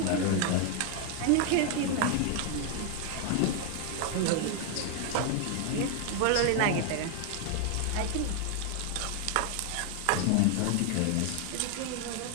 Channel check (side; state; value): both; different; correlation 0.00